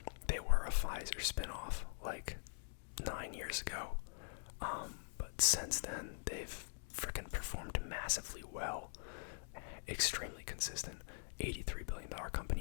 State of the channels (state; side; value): silent; right; digital silence